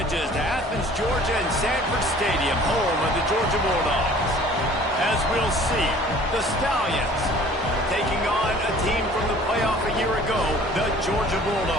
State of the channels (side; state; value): both; normal; correlation 0.50